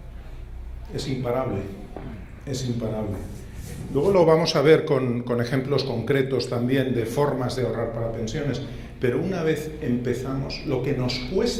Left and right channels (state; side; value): identical; both; correlation 1.00